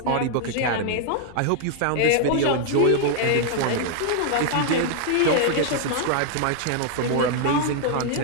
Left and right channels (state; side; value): different; both; correlation 0.00